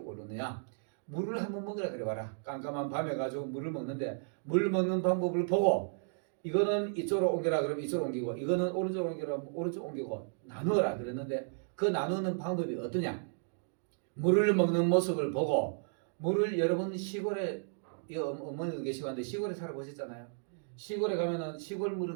물을 한번 먹으라 그래 봐라. 깜깜한 밤에 가지고 물을 먹는데 물 먹는 방법을 보고 이거는 이쪽으로 옮겨라 그러면 이쪽으로 옮기고 이거는 오른쪽으로 옮겨라 오른쪽 옮기고 나누어라 그랬는데 그 나누는 방법이 어떠냐? 물을 먹는 모습을 보고 물을 여러분 시골에 어머니도 계시고 한데 시골에 살아보셨잖아요. 시골에 가면은 시골 물을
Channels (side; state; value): left; silent; digital silence